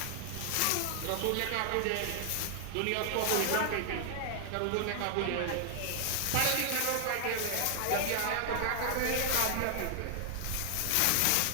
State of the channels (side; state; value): both; different; correlation 0.00